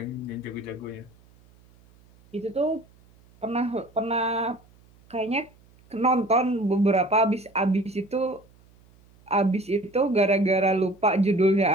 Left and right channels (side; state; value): right; noise; hum, 29 dB below the sound